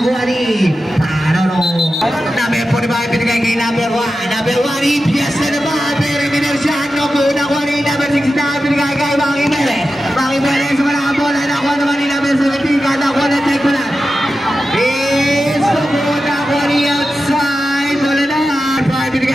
ni Tarano. Number 45. Binigay kay number 1. Number 1. EPS na naman. Perry Minercian. Nakuha ni number 69. Binigay kay Maki Perez. Maki Perez. Wala ang bola. Nakuha naman ni number 17. Nakuha na check ko lang. Outside, bola na. 5,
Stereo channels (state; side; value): normal; both; correlation 0.92